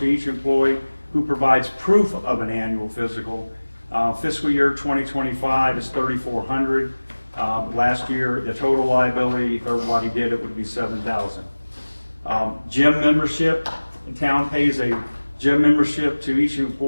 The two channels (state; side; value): inverted; both; correlation -1.00